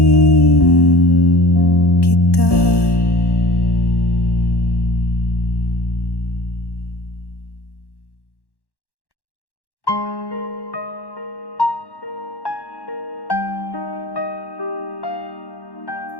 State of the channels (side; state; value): right; late; 1.1 ms